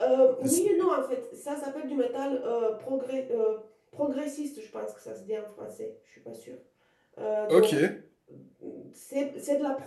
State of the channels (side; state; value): both; identical; correlation 1.00